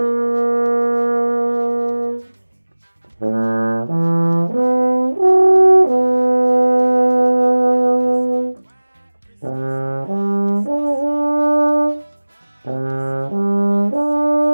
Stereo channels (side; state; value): both; inverted; correlation -1.00